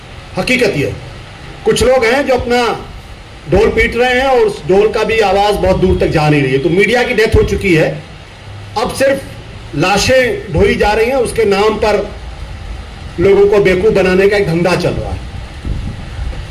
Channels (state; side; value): identical; both; correlation 1.00